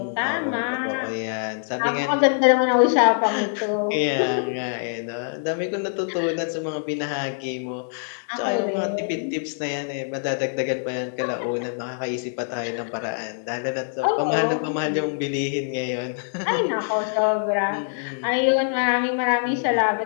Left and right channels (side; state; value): right; silent; digital silence